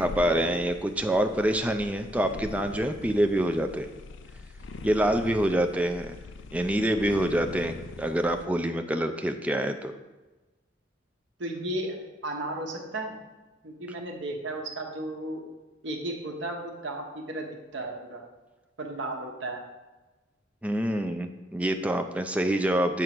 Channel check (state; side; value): normal; both; correlation 0.74